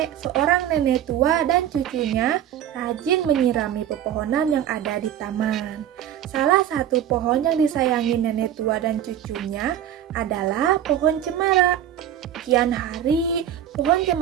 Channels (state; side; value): quieter; left; 10.5 dB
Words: seorang nenek tua dan cucunya rajin menyirami pepohonan yang ada di taman. Salah satu pohon yang disayangi nenek tua dan cucunya adalah pohon cemara. Kian hari, pohon